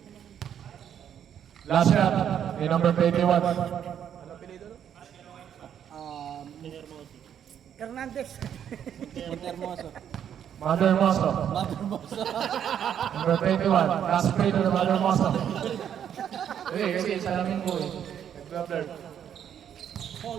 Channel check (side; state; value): left; quieter; 9.2 dB